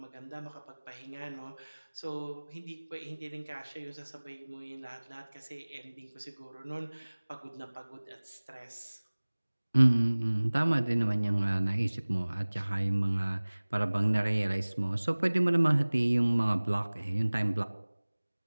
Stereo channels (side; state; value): both; inverted; correlation -1.00